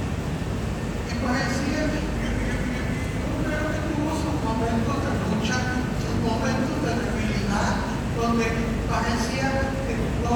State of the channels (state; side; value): identical; both; correlation 1.00